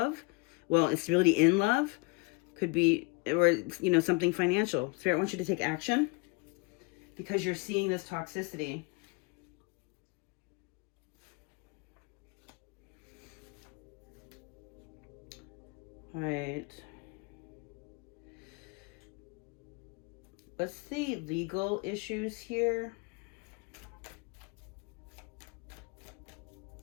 Well, stability in love could be, or, something financial. Spirit wants you to take action because you're seeing this toxicity. All right. What's the legal issues here?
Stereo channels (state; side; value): quieter; right; 28.5 dB